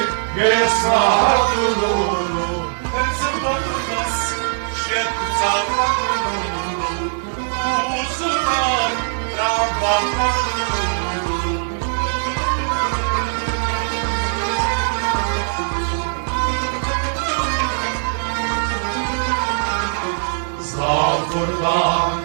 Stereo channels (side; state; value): left; silent; 65 dB below the other